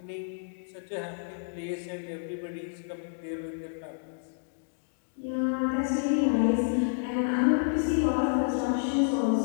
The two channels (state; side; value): silent; right; digital silence